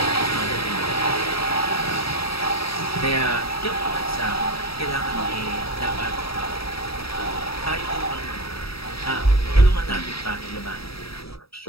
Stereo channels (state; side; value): late; right; 0.77 ms